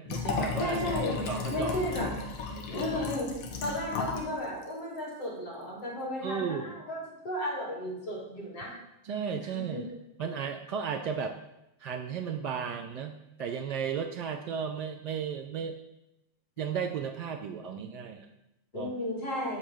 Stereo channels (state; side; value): late; right; 7.6 ms